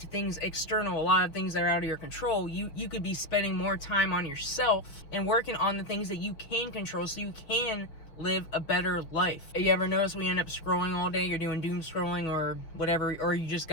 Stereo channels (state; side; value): late; right; 6.2 ms